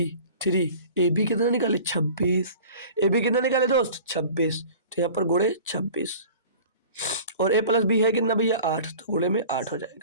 3ab कितना निकाले? 26। ए बी कितना निकाले दोस्त? 26। तो यहाँ पर गुणे 26 और ए प्लस बी है कितना भैया? 8, तो गुणे में 8 हो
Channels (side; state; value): both; inverted; correlation -0.43